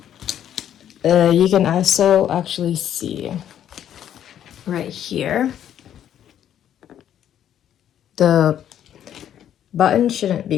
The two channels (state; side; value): quieter; right; 10.3 dB